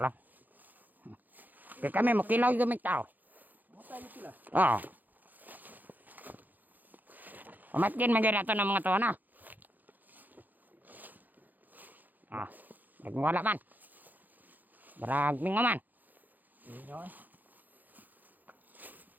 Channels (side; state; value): left; late; 0.084 ms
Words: lang. Kaya kami, makilaw yung gamit tao. Matay sila. Oo. Umatkin maganda ito ng mga to na. Ah, nagwala man. Baragming man. Inyo.